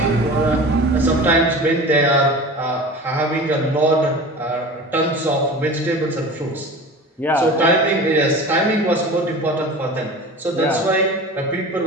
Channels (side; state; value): both; normal; correlation 0.36